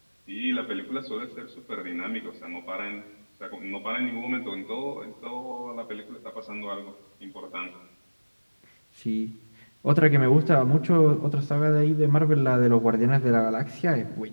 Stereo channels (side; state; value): both; inverted; correlation -1.00